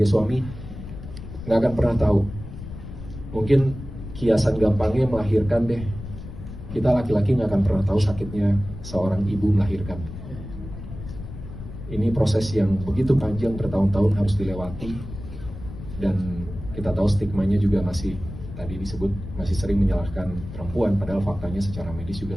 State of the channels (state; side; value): noise; left; rumble, 11 dB below the sound